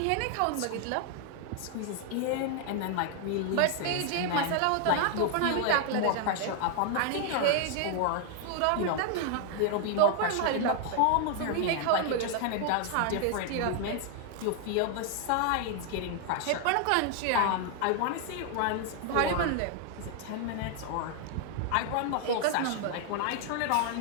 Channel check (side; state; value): both; different; correlation 0.00